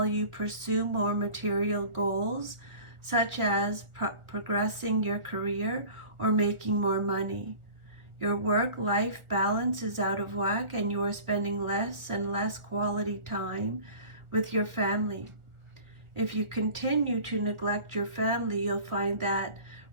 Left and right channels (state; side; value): late; left; 1.3 ms